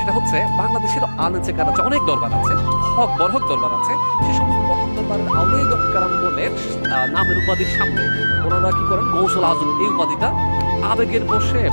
হচ্ছে বাংলাদেশের আলেমে কারামে অনেক দরবার আছে, হক বরহক দরবার আছে, সে সমস্ত বরহক দরবারের আউলিয়া কারামগণের নামের উপাধির সামনে ওনারা কি করেন গৌসুল আজম এই উপাধিটা আবেগের বসে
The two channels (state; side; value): inverted; both; correlation -1.00